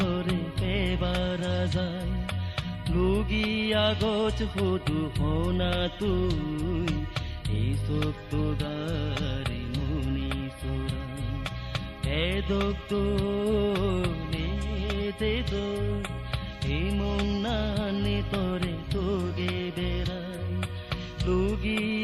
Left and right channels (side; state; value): both; identical; correlation 1.00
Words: পেবাৰা যায় লুগি আগত সুধু শুনা তুই এই চকু গাড়ী মুনি চোৰা এদক্তনে দেদো এই মনানি তরে তোগে বেড়াই লুগি